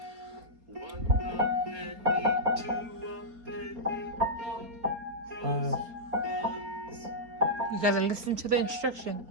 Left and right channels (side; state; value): left; late; 4.2 ms